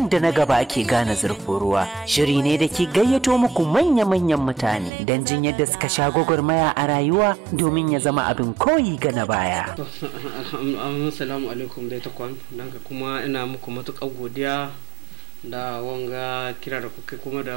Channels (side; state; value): left; drops out; at 4.9 s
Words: da na gaba ake gane zurfin ruwa shiri ne da ke gayyato muku manya-manyan mutane don jin yadda suka sha gwagwarmaya a rayuwa domin ya zama abin koyi ga na baya. Assalamu alaikum dai takwan, don kuma ina muku matuƙar godiya da wanga kira da kuka kuma da